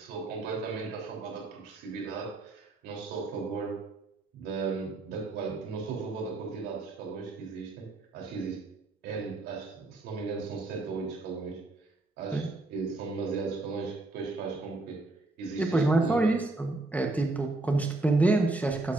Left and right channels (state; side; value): quieter; left; 3.0 dB